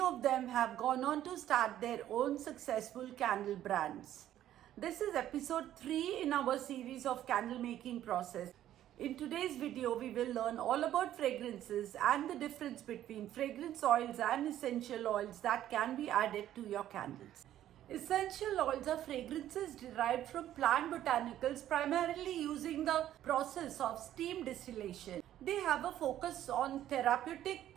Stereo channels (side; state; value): left; quieter; 12.2 dB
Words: them have gone on to start their own successful candle brands. This is episode 3 in our series of candle making process. In today's video, we will learn all about fragrances and the difference between fragrance oils and essential oils that can be added to your candles. Essential oils are fragrances derived from plant botanicals, primarily using the process of steam distillation. They have a focus on therapeutic